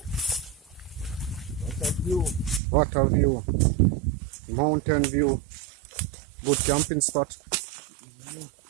What's that view? What a view. Mountain view. Good camping spot.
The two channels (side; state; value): left; drops out; at 2.6 s